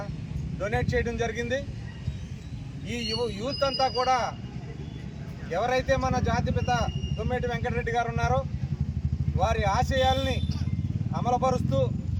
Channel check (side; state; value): both; identical; correlation 1.00